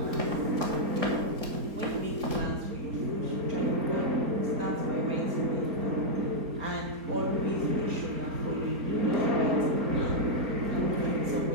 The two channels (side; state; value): left; late; 4.3 ms